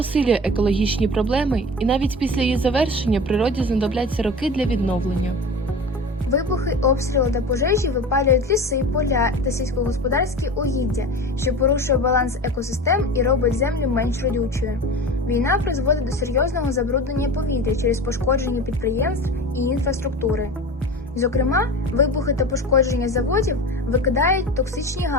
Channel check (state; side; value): normal; both; correlation 0.32